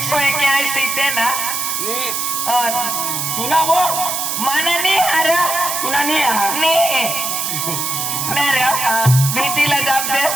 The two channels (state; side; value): noise; right; hiss, 1 dB below the sound